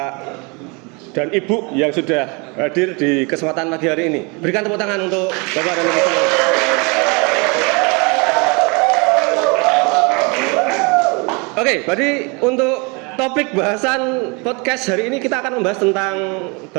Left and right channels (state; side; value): quieter; left; 30.3 dB